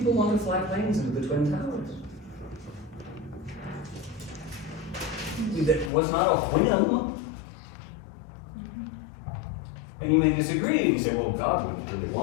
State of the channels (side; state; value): right; drops out; at 5.9 s